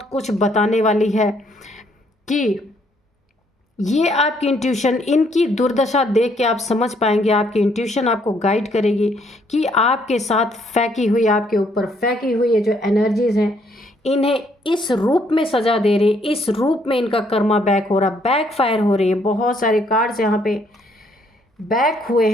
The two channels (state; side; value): normal; both; correlation 0.68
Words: कुछ बताने वाली है कि ये आपकी इंट्यूशन, इनकी दुर्दशा देख के आप समझ पाएंगे, आपकी इंट्यूशन आपको गाइड करेगी कि आपके साथ फेंकी हुई, आपके ऊपर फेंकी हुई ये जो एनर्जीज़ हैं, इन्हें इस रूप में सजा दे रही, इस रूप में इनका कर्मा बैक हो रहा, बैक फायर हो रही है। बहुत सारे कार्ड्स यहाँ पे बैक हुए